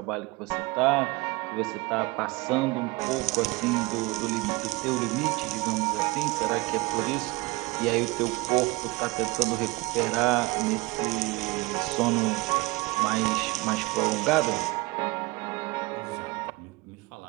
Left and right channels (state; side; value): quieter; left; 23.0 dB